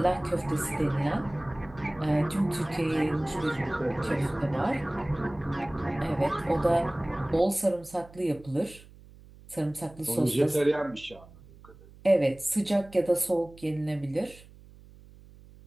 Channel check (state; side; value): noise; right; hum, 22 dB below the sound